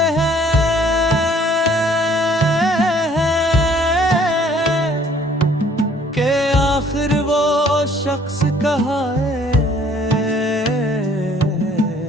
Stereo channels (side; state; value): both; normal; correlation 0.58